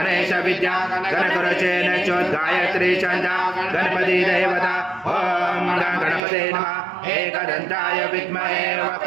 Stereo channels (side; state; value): left; drops out; at 6.2 s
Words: विद्या गणकुरुचेन चोद्गायत्री छन्दा गणपति देवता ॐ गणपते नमः। एकदन्ताय विद्महे